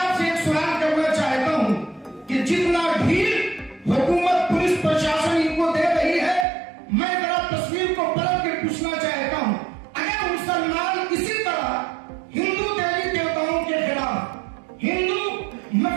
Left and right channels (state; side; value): drops out; left; at 6.5 s